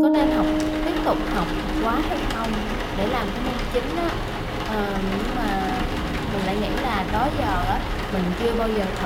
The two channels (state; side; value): identical; both; correlation 1.00